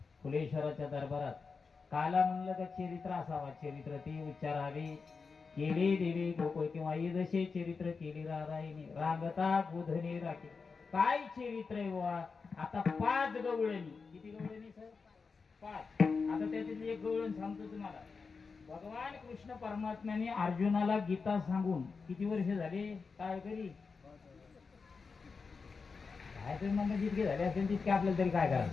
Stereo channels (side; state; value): right; quieter; 4.9 dB